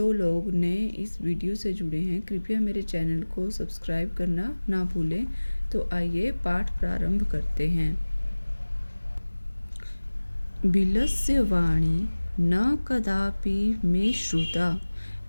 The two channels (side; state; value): both; inverted; correlation -1.00